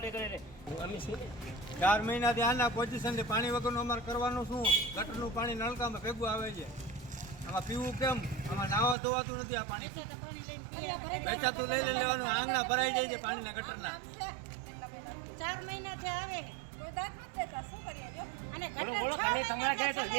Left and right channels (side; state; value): left; drops out; at 9.0 s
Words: કરે છે? અમે શું 4 મહિનાથી આના પોઝિશનથી પાણી વગરનું અમારે કરવાનું શું? ગટરનું પાણી નળકામાં ભેગું આવે છે. આમાં પીવું કેમ? આમાં નાવા ધોવાતું નથી. આ પાણી વેચાતું લઈ લેવાનું. આંગણા ભરાઈ જાય છે પાણીના ગટરના. 4 મહિનાથી આવે કોઈ દાંત નથી દેતા. શું કરીએ જો? અને બોલો તમે તમારા ઘરે તો